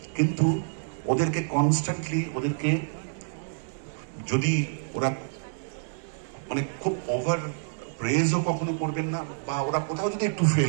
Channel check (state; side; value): silent; left; digital silence